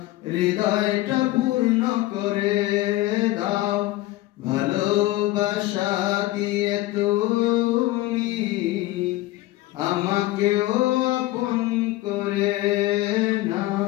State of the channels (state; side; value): quieter; right; 17.3 dB